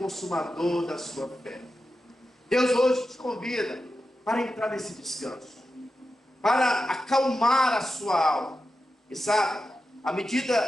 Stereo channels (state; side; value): normal; both; correlation 0.91